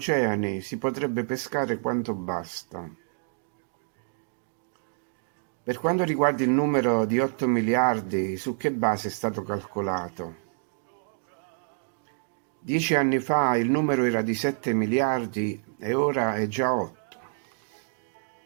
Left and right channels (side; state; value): left; silent; digital silence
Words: si potrebbe pescare quanto basta. Per quanto riguarda il numero di 8 miliardi, su che base è stato calcolato? 10 anni fa il numero era di 7 miliardi e ora è già 8.